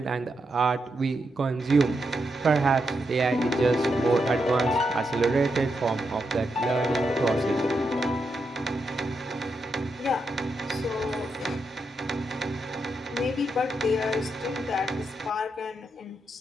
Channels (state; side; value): normal; both; correlation 0.84